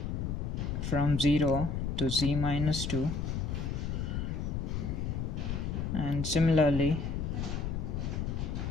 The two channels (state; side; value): noise; left; rumble, 2 dB below the sound